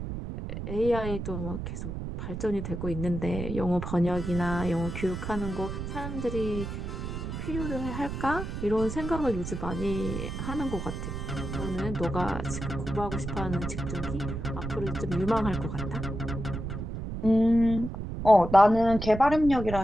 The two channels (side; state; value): right; noise; rumble, 6 dB below the sound